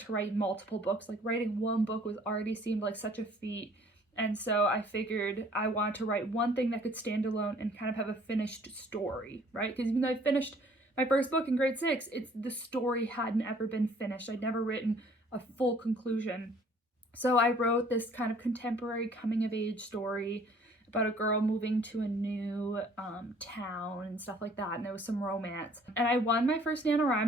write multiple books. Writing one book already seemed like such a feat. And so I figured I wanted to write one thing that could stand alone and kind of have a finished story, right? Because even though I finished my first book in grade 6, the story hadn't ever been finished. I'd never written a full conclusion. So I wrote this kind of contemporary coming of age story about a girl moving to a new town and stuff like that, and there was some romance. And I won my first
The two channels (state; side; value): normal; both; correlation 0.57